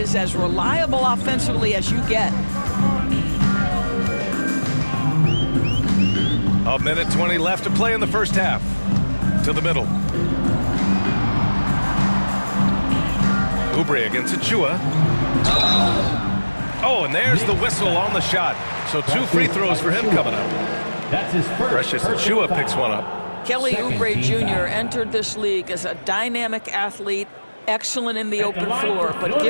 as reliable offensively as you get. A minute 20 left to play in the first half. To the middle. Oubre against Achua. Oh, and there's the whistle on the shot. So 2 free throws for him coming up. That's his first. Precious Achua picks one up. Kelly Oubre Jr. entered this league as a dynamic athlete, excellent in the open floor, but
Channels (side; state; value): both; inverted; correlation -1.00